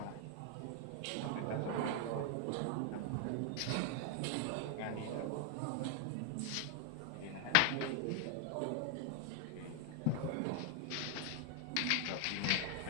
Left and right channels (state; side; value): different; both; correlation 0.00